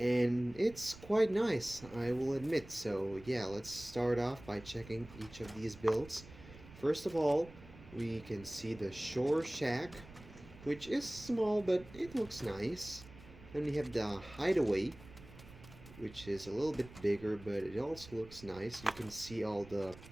it's quite nice, I will admit. So yeah, let's start off by checking each of these builds. First of all, we can see the Shore Shack, which is small but it looks nice. Then we have the Hideaway, which is a little bit bigger but it also looks nice. You can see all the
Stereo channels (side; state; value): right; noise; rumble, 18 dB below the sound